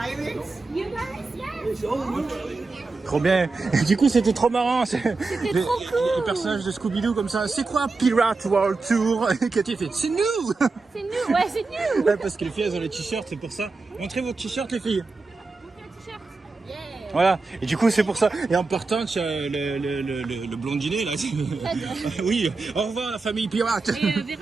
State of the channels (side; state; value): left; quieter; 3.9 dB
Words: You guys, yes. Trop bien. Et du coup, c'était trop marrant. C'était trop cool. Les personnages de Scooby-Doo comme ça. C'est quoi Pirate World Tour? Cathy fait, c'est nous. C'est nous, ouais, c'est nous. Ouais, parce que les filles, elles ont les t-shirts, c'est pour ça. Montrez vos t-shirts, les filles. T-shirt. Yeah. Voilà. Et du coup, c'est pour ça. Et en partant, tu as le blondinet, là. Oui. Au revoir, la famille pirate. Et